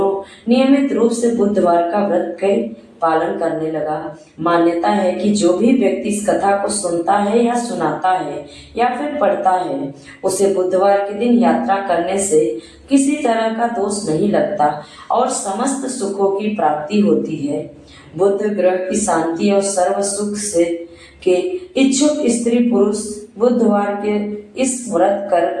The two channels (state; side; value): identical; both; correlation 1.00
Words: नियमित रूप से बुधवार का व्रत के पालन करने लगा। मान्यता है कि जो भी व्यक्ति इस कथा को सुनता है या सुनाता है या फिर पढ़ता है, उसे बुधवार के दिन यात्रा करने से किसी तरह का दोष नहीं लगता और समस्त सुखों की प्राप्ति होती है। बुद्ध ग्रह की शांति और सर्व सुख से के इच्छुक स्त्री पुरुष बुधवार के इस व्रत